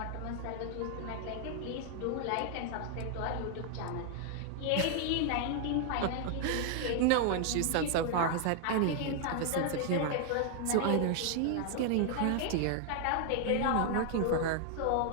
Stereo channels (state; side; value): different; both; correlation 0.00